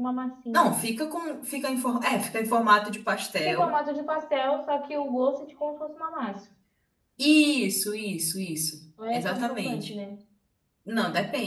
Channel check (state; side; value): identical; both; correlation 1.00